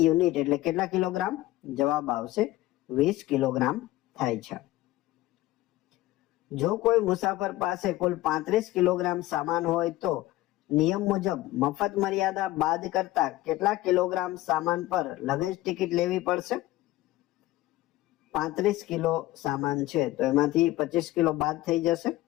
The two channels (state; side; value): quieter; right; 16.8 dB